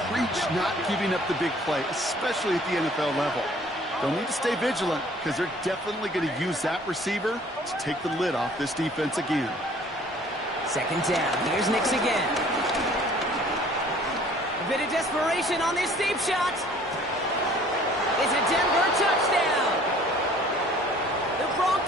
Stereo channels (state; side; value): normal; both; correlation 0.54